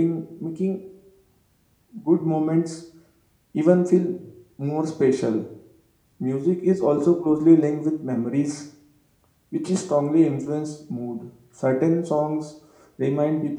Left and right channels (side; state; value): both; identical; correlation 1.00